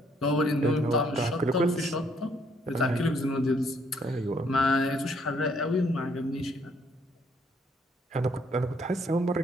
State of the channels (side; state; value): both; normal; correlation 0.67